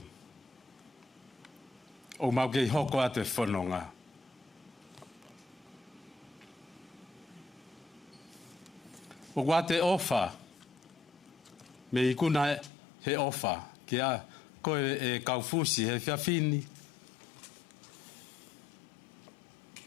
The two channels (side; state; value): right; drops out; at 12.7 s